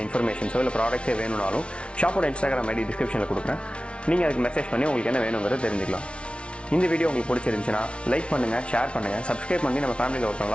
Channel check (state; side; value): late; right; 0.059 ms